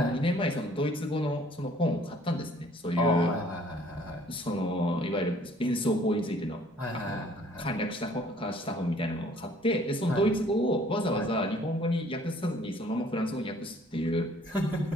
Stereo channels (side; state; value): both; normal; correlation 0.58